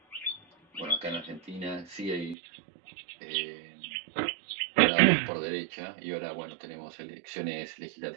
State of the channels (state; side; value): drops out; left; at 2.4 s